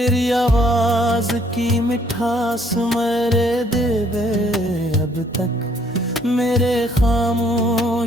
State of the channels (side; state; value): both; normal; correlation 0.64